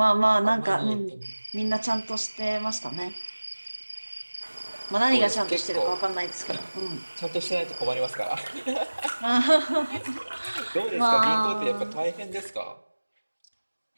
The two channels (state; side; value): inverted; both; correlation -1.00